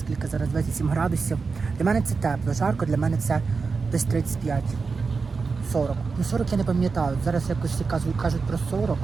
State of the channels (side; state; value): left; quieter; 4.7 dB